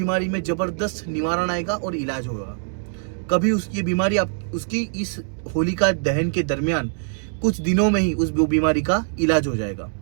में जबरदस्त निवारण आएगा और इलाज होगा। कभी उसकी बीमारी उसकी इस होलिका दहन के दरमियान कुछ दिनों में ही उस बीमारी का इलाज हो जाएगा।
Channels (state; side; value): silent; left; 63 dB below the other